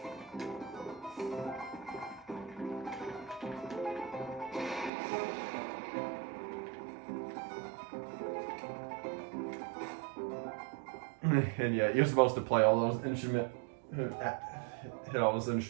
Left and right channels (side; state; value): left; drops out; at 4.9 s